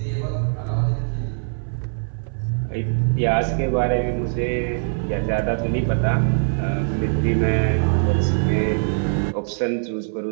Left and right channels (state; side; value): silent; left; 58 dB below the other